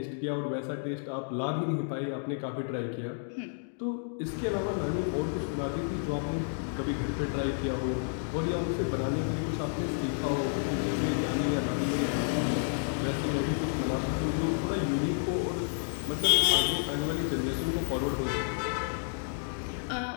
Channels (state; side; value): silent; right; digital silence